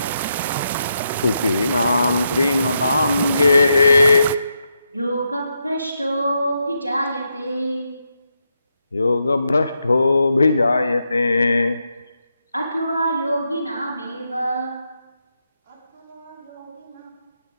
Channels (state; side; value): inverted; both; correlation -0.83